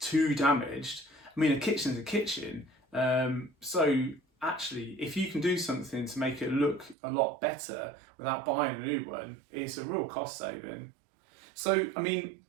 too damaged. I mean, a kitchen's a kitchen. So actually, if you can do something to make it look a lot better without buying a new one, it's a real cost saving. So, I mean,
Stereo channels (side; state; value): left; drops out; at 7.0 s